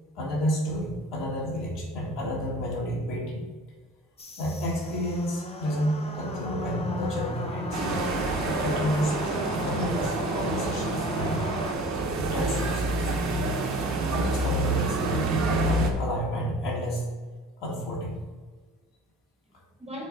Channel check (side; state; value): both; normal; correlation 0.44